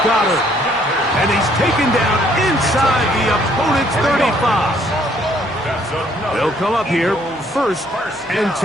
Goddard. And he's taken down inside the opponent's 35. They'll come up here, first and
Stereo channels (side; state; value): both; normal; correlation 0.64